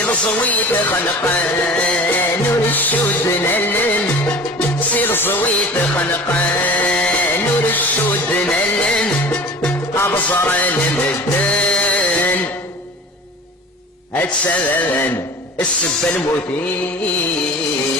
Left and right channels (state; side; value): normal; both; correlation 0.39